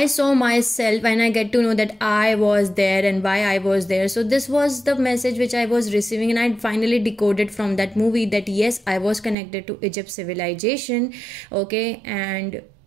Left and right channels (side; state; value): left; drops out; at 9.3 s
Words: saw myself, and I get to know that I was there and why I was there. So this was the message which I was receiving, and I finally decoded from that movie that yes, I was connected to Egypt civilization. Okay, and